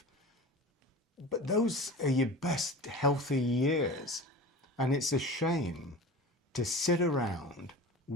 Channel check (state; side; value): normal; both; correlation 0.34